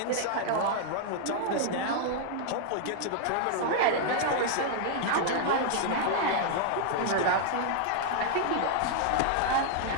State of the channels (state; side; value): different; both; correlation -0.01